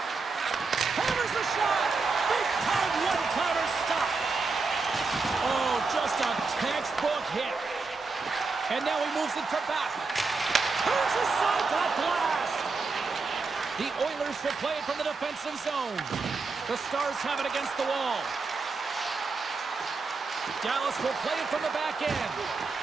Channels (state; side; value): quieter; left; 4.2 dB